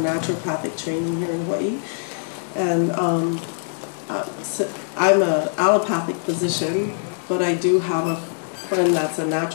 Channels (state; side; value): silent; right; digital silence